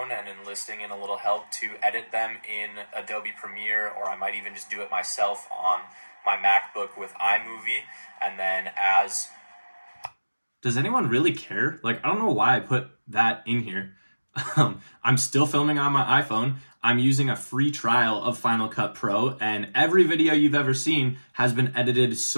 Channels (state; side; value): inverted; both; correlation -1.00